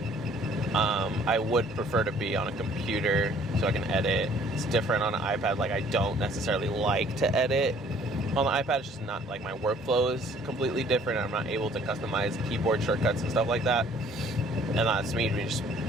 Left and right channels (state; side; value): normal; both; correlation 0.57